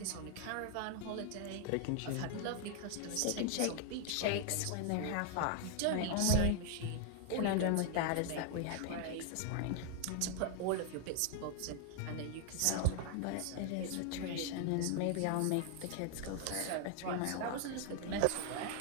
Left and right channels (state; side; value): different; both; correlation 0.00